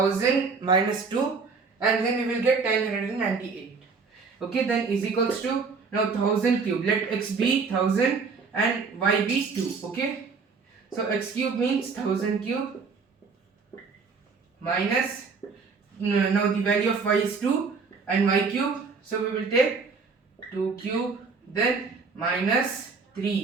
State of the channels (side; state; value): left; quieter; 4.9 dB